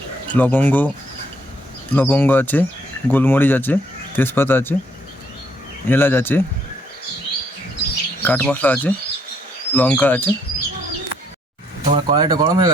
লবঙ্গ আছে, গোলমরিচ আছে, তেজপাতা আছে, এলাচ আছে, কাঠ মশলা আছে, লঙ্কা আছে। আমার কড়াইটা গরম হয়ে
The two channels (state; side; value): normal; both; correlation 0.69